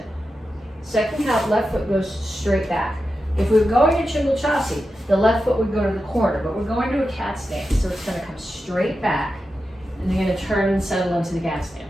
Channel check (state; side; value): normal; both; correlation 0.90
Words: Second count, left foot goes straight back. If we were going to Chungal Chassi, the left foot would go to the corner, but we're going to a cat stance, so it's going to come straight back, and you're going to turn and settle into the cat stance.